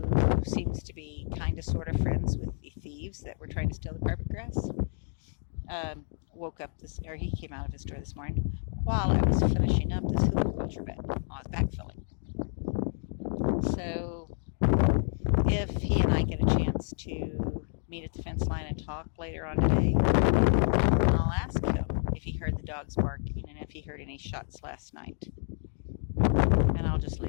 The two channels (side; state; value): right; silent; 58 dB below the other